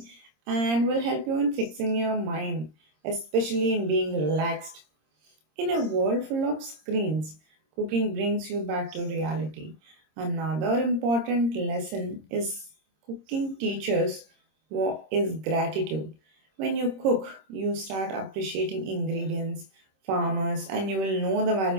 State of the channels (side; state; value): left; late; 26 ms